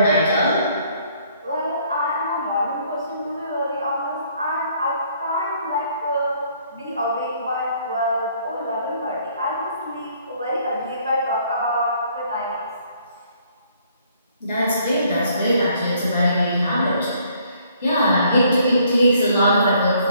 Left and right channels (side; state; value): both; inverted; correlation -0.63